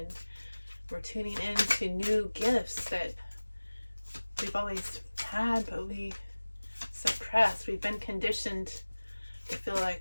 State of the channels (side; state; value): both; inverted; correlation -1.00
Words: we're tuning into new gifts that we've always had but we suppressed. We've been conditioned to feel like